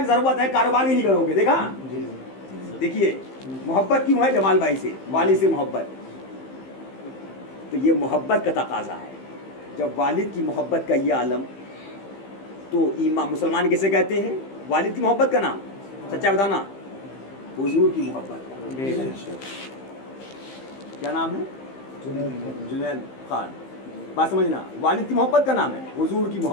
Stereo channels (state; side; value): late; right; 15 ms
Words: जरूरत है कारोबार भी नहीं करोगे। देखा, देखिए मोहब्बत क्यों है जमाल भाई से, वालिद से मोहब्बत, तो ये मोहब्बत का तकाजा है। जब वालिद की मोहब्बत का ये आलम, तो ईमान मुसलमान किसे कहते हैं? वालिद की मोहब्बत का नाम, सच्चा बताना, हुजूर की मोहब्बत का क्या नाम है? जुनैद खान। बात समझना, वालिद की मोहब्बत का नाम है, हुजूर की